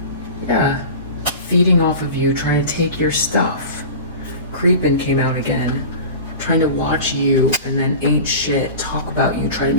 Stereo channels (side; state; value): both; inverted; correlation -0.34